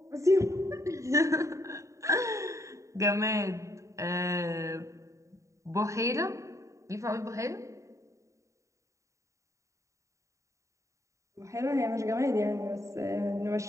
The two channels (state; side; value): late; left; 0.15 ms